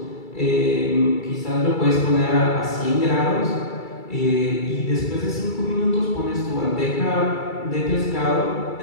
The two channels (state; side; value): late; right; 2.3 ms